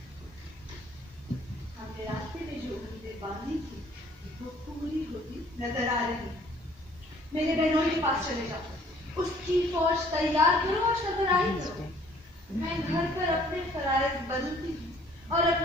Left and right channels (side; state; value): both; normal; correlation 0.58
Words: हमने रास्ते में जो उम्मीदें बांधी थी वो पूरी होती नजर आ रही। मेरे बहनों के पास चले जाओ, उसकी फौज तैयार करो और सरबराही करो। मैं घर पर अपने फराइज बदलती हूँ और